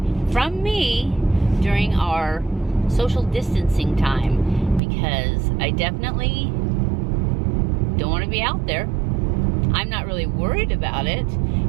from me during our social distancing time, because I definitely don't want to be out there. I'm not really worried about it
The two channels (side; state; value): left; drops out; at 4.8 s